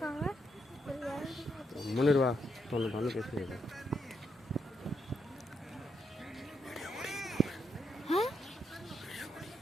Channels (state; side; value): normal; both; correlation 0.79